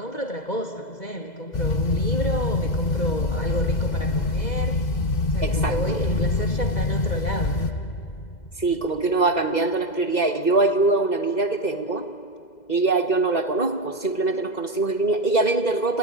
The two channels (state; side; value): late; right; 2.0 ms